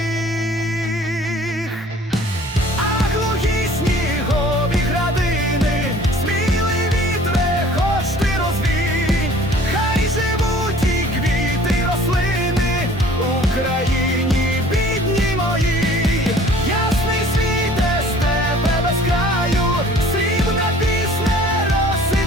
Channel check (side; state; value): both; normal; correlation 0.51